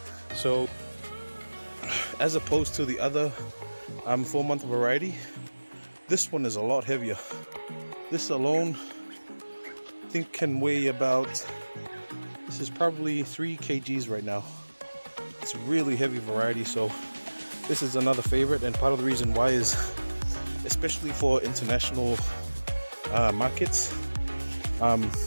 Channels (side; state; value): both; inverted; correlation -1.00